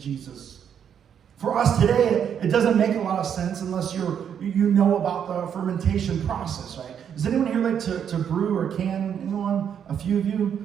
For us today, it doesn't make a lot of sense unless you know about the fermentation process, right? Does anyone here like to brew or can? Anyone? A few of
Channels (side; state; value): left; quieter; 8.3 dB